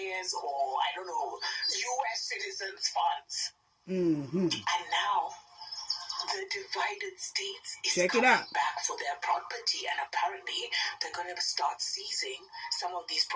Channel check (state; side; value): identical; both; correlation 1.00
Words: or, I don't know, U.S. citizens' funds. Mm-hmm. And now the divided states is Check it coming out. back for their property, and apparently they're going to start seizing some of these